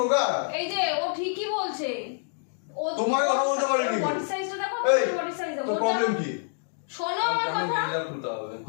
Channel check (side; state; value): right; silent; digital silence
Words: এই যে ও ঠিকই বলছে। ও তোমার কথা বলতে পারিনি। বডি সাইজটা দেখো, এই বডি সাইজ দেখো। তোর প্রবলেম কি? শোনো আমার কথা। এটা খুলতে হবে।